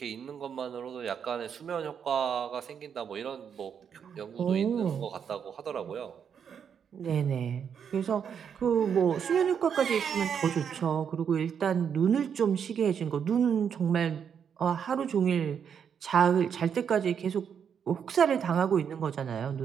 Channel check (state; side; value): quieter; left; 7.6 dB